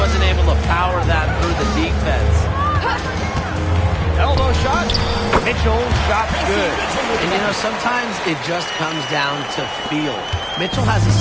able to power that through the defense. Elbow shot. Mitchell, shot's good. And, you know, sometimes it just comes down to feel. Mitchell has a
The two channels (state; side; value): identical; both; correlation 1.00